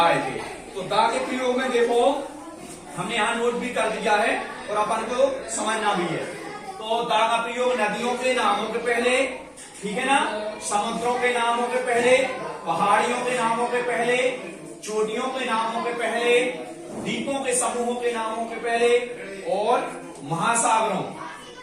थे, तो दा के प्रयोग में देखो हमने यहाँ नोट भी कर दिया है और अपन को समझना भी है। तो दा का प्रयोग नदियों के नामों के पहले, ठीक है ना, समुद्रों के नामों के पहले, पहाड़ियों के नामों के पहले, चोटियों के नामों के पहले, द्वीपों के समूहों के नामों के पहले और महासागरों,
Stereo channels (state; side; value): identical; both; correlation 1.00